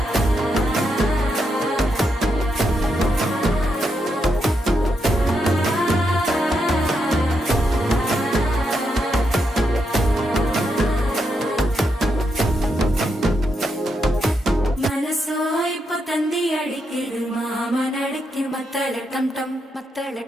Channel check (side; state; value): both; normal; correlation 0.82